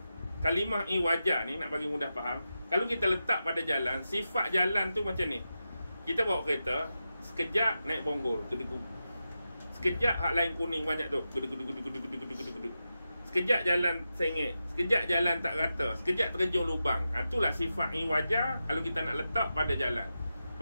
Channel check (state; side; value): inverted; both; correlation -0.90